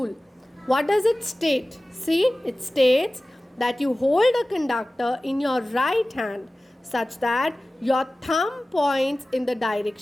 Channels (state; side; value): normal; both; correlation 0.97